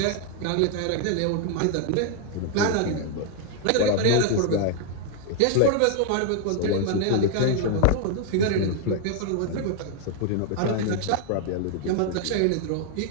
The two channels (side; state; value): both; different; correlation 0.00